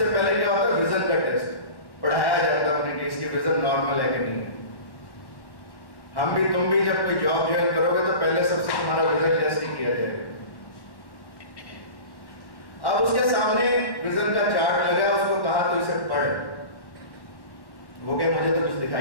पहले क्या होता है, विजन का टेस्ट पढ़ाया जाता है उन्हें कि इसकी विजन नॉर्मल है कि नहीं है। हम भी तुम भी जब कोई जॉब ज्वाइन करोगे तो पहले सबसे तुम्हारा विजन टेस्ट ही किया जाएगा। अब उसके सामने विजन का चार्ट लगा, उसको कहा तो इसे पढ़। वो कहे मुझे तो कुछ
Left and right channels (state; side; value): late; right; 1.1 ms